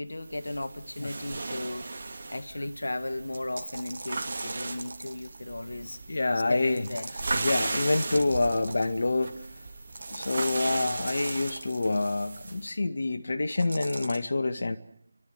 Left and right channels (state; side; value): inverted; both; correlation -0.96